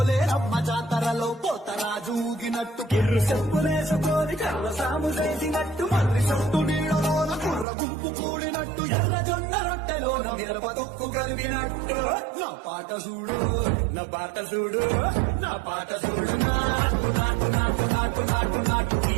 జాతరలో పోతరాజు ఊగినట్టు కిర్రు చెప్పులేసుకొని కర్ర సాము చేసినట్టు మర్రి చుట్టూ నీడలోన కుర్ర గుంపు కూడినట్టు ఎర్ర జొన్న రొట్టెలోన మిరప తొక్కు కలిగినట్టు నా పాట చూడు నా పాట చూడు నా పాట చూడు నాటు నాటు నాటు నాటు నాటు నాటు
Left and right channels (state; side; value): drops out; left; at 7.7 s